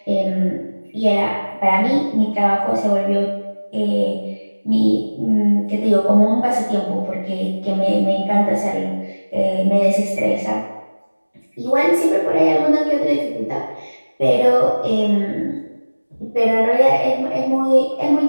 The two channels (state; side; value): inverted; both; correlation -1.00